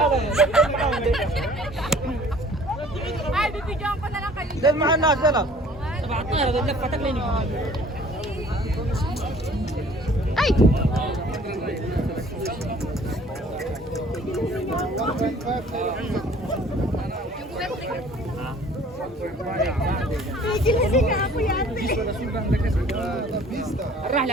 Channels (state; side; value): normal; both; correlation 0.53